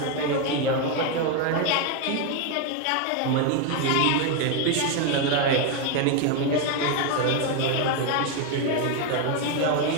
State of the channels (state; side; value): different; both; correlation 0.02